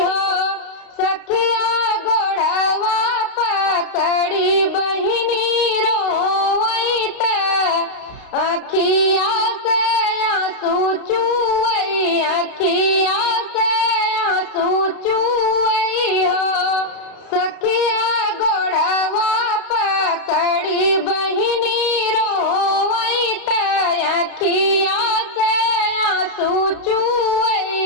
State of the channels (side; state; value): right; late; 32 ms